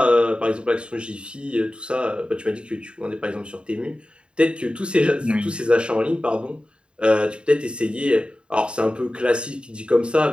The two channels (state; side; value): late; left; 0.053 ms